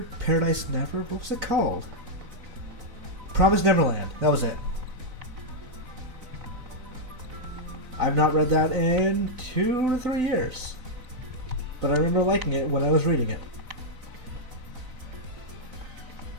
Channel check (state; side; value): late; left; 4.0 ms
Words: Paradise Never? What was it called? Promised Neverland. That was it. I've not read that in 2 to 3 years. But I remember liking it when I was reading it.